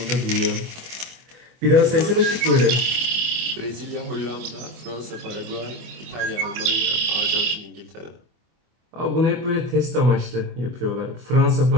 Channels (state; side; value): late; left; 24 ms